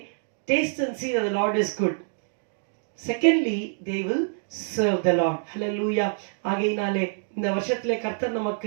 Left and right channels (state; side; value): silent; left; digital silence